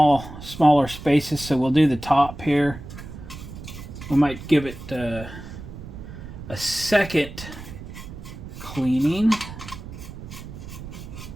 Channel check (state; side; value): noise; right; rumble, 12 dB below the sound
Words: spaces. So we'll do the top here. We might give it a second cleaning.